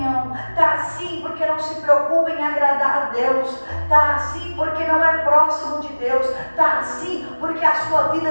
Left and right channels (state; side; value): inverted; both; correlation -1.00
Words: Tá assim porque não se preocupa em agradar a Deus. Tá assim porque não é próximo de Deus. Tá assim porque a sua